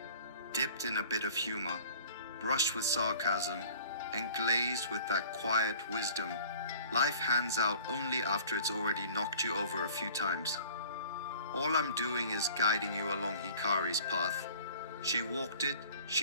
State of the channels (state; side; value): inverted; both; correlation -0.49